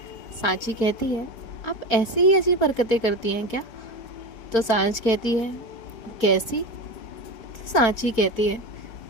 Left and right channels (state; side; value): late; right; 4.4 ms